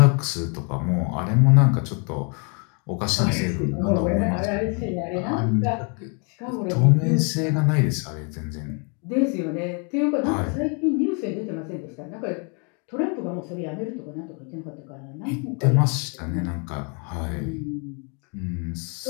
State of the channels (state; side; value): quieter; right; 36.7 dB